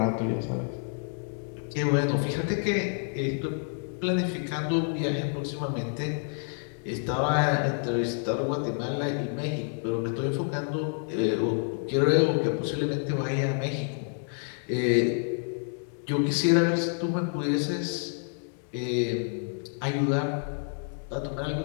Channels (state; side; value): silent; right; 59 dB below the other